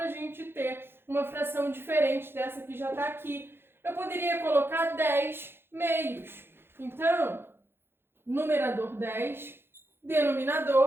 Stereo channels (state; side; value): late; left; 0.11 ms